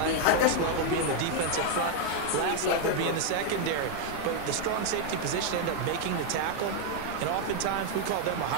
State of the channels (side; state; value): both; different; correlation 0.00